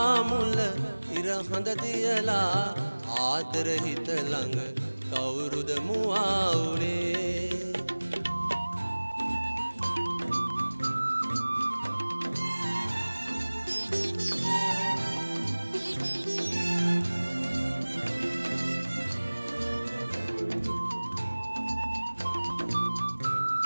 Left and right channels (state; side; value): inverted; both; correlation -1.00